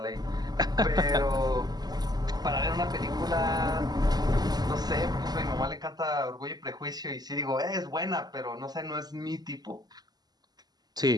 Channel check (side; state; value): left; late; 0.20 ms